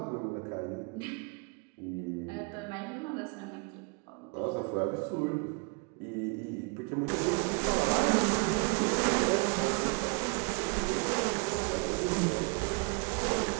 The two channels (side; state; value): left; quieter; 33.4 dB